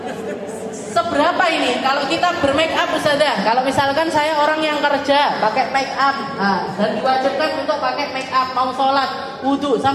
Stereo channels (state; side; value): identical; both; correlation 1.00